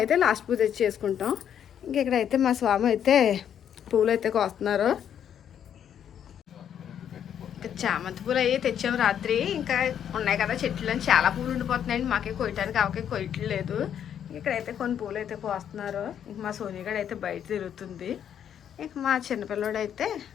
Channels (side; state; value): right; quieter; 9.2 dB